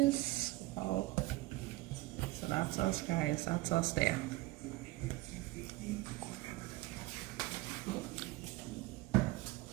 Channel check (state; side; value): quieter; left; 19.2 dB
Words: Oh. So that's us, guys. That's us there.